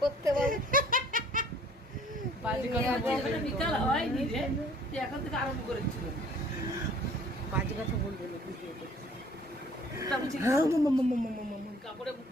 করতে পারবো। বাজে কথা বলবে না, বিকাল হয়নি রে, তুই এখন থেকে আরম্ভ করেছিল। বাজে কথা বলবে না ভিডিওতে। কাপড়ে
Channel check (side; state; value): both; normal; correlation 0.54